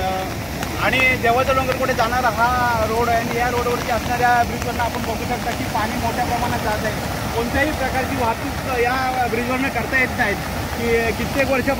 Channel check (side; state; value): both; identical; correlation 1.00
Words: आणि देवाचा डोंगरकडे जाणारा हा रोड आहे आणि या रोडवरती असणाऱ्या ब्रिजवरनं आपण बघू शकता की पाणी मोठ्या प्रमाणात जात आहे। कोणत्याही प्रकारची वाहतूक या ब्रिजवरनं करता येत नाहीत की कित्येक